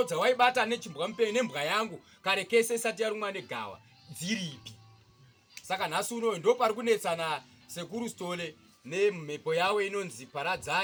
dzawaibata nechimbwa mupengo nembwa yangu kare kese isati yarumwa negawa dziripi? Saka nhasi unoyo ndopari kunetsana Sekuru Sole nemhepo yawo inonzi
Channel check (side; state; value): both; identical; correlation 1.00